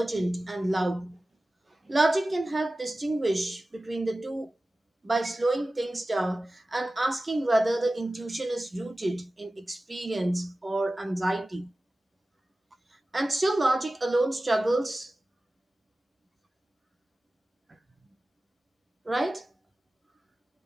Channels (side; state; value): both; normal; correlation 0.96